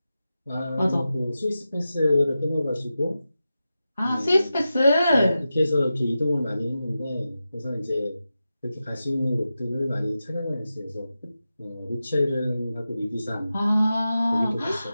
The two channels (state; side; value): inverted; both; correlation -0.92